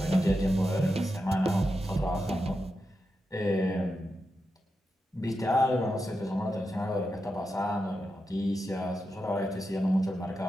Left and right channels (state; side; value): normal; both; correlation 0.88